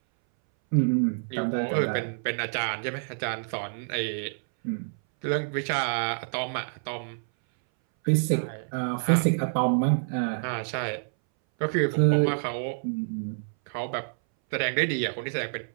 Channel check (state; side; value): silent; left; 60 dB below the other